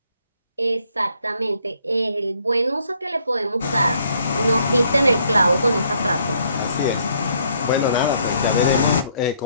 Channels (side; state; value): both; inverted; correlation -0.68